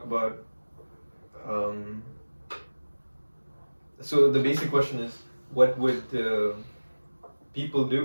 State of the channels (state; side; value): inverted; both; correlation -1.00